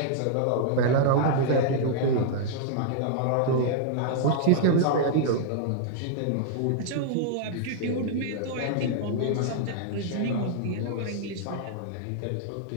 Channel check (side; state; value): both; different; correlation -0.01